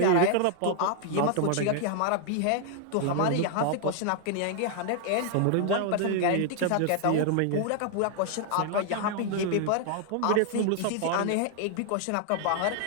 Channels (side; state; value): both; different; correlation 0.00